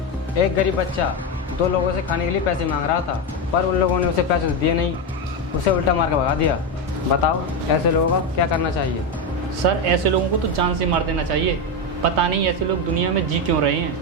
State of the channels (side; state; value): both; normal; correlation 0.11